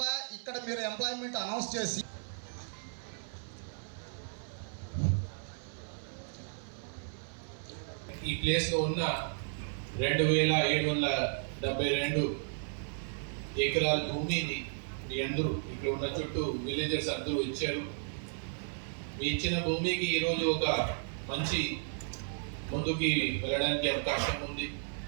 ఇక్కడ మీరు ఎంప్లాయ్మెంట్ అనౌన్స్ చేసి ఈ ప్లేస్లో ఉన్న 2772 ఎకరాల భూమిని మీ అందరూ ఇక్కడ ఉన్న చుట్టూ విలేజర్స్ అందరూ ఇచ్చారు. మీ ఇచ్చిన భూమికి ఈరోజు ఒక మంచి ముందుకి వెళ్ళడానికి అవకాశం ఉంది.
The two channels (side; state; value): left; silent; 55 dB below the other